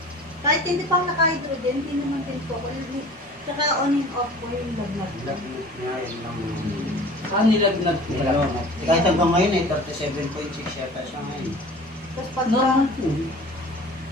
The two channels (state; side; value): normal; both; correlation 0.43